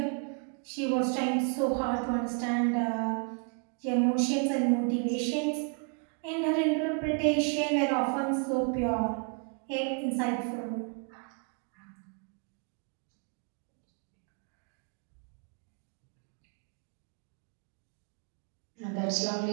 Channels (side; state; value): left; quieter; 39.5 dB